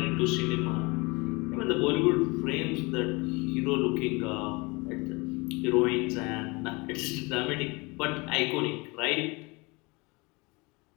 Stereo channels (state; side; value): quieter; right; 26.5 dB